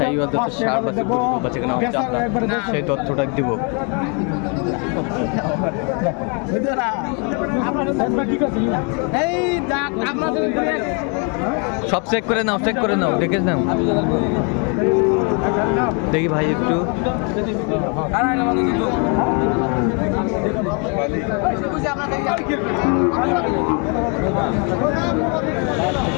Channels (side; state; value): right; quieter; 36.1 dB